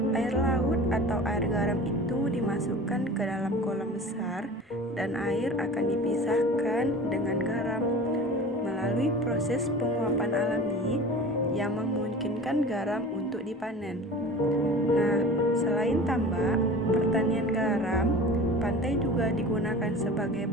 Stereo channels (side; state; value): both; normal; correlation 0.38